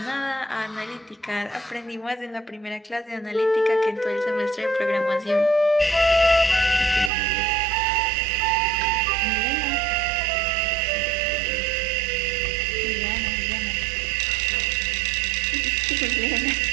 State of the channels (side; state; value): left; drops out; at 7.1 s